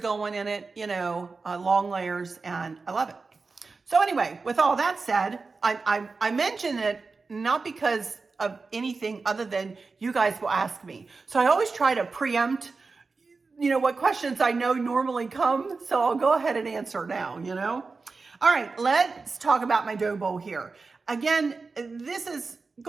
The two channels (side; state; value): left; quieter; 4.2 dB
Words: in it, you know, long layers, and I love it. So anyway, with all that said, I mention it not because of anything other than you guys will ask me. So I always try to preempt, you know, what questions I know normally come. So I'll go ahead and answer now, you know. All right, let's talk about my dough bowl here. Again, this is